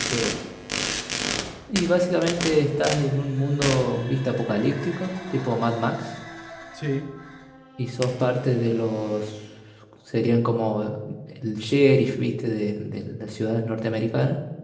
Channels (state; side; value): identical; both; correlation 1.00